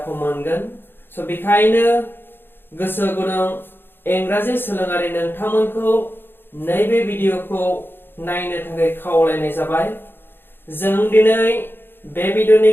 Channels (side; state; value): right; late; 0.10 ms